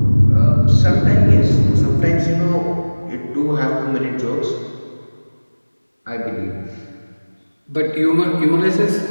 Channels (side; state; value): both; inverted; correlation -1.00